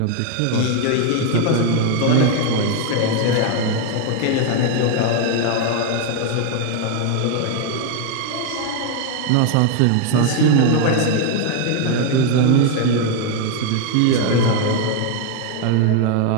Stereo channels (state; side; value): different; both; correlation 0.01